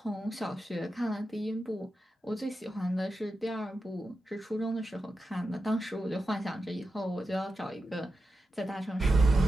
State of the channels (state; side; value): normal; both; correlation 0.90